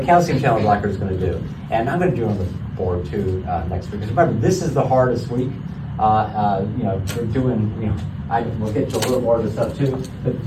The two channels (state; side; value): identical; both; correlation 1.00